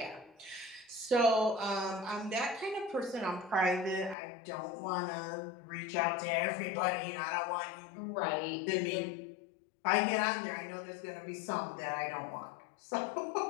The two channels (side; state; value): right; drops out; at 4.2 s